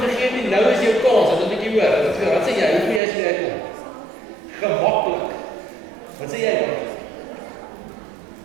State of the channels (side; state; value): left; drops out; at 3.0 s